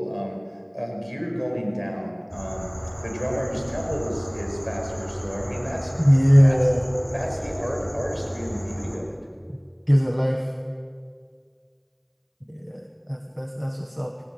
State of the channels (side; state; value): both; identical; correlation 1.00